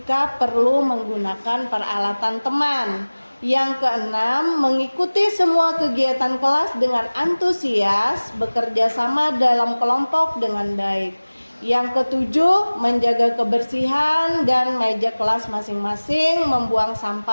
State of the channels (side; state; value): both; inverted; correlation -1.00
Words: perlu menggunakan peralatan teman. Yang keenam, mengikuti semua kegiatan kelas dengan antusias, bekerja sama dalam kelompok dengan baik. Yang ketujuh, menjaga kebersihan dan meja kelas masing-masing, membuang